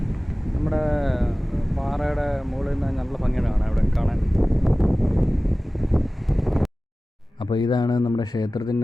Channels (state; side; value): normal; both; correlation 0.97